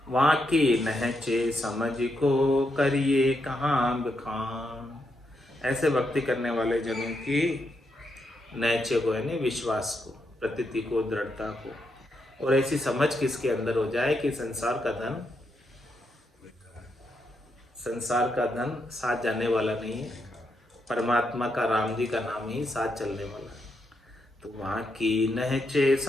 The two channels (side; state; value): both; normal; correlation 0.81